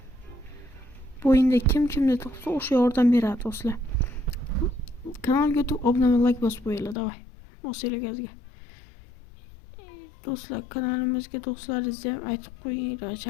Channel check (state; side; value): drops out; right; at 7.0 s